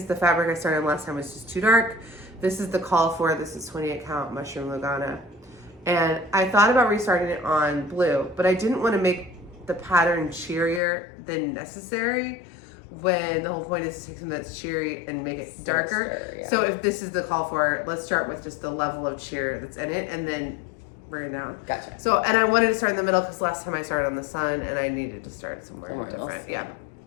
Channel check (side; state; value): right; drops out; at 10.8 s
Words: the fabric I started last time was just too dark. This is the call for, this is 28 count Mushroom Lugana. And I thought about restarting it on blue, but I didn't want to make the pattern cheerier than necessary when the whole point is to take something that's cheery and make it darker. Yeah. So if this is the call for, let's start with just the level of cheer that's in it and then bring it down. Gotcha. So, and I wanted to start in the middle because last time I started on the sun and I needed to start somewhere different. Else. Yeah.